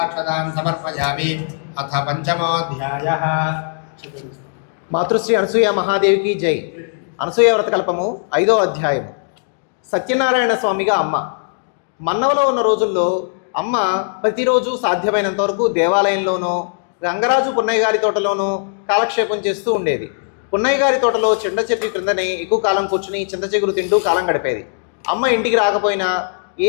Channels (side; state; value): right; silent; digital silence